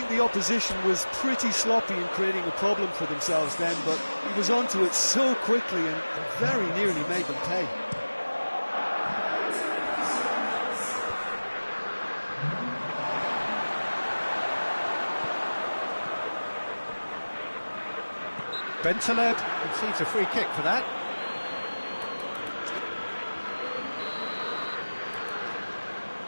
the opposition was pretty sloppy in creating a problem for themselves then, but he was onto it so quickly and very nearly made them pay. Bentaleb conceives a free kick for that.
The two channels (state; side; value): inverted; both; correlation -1.00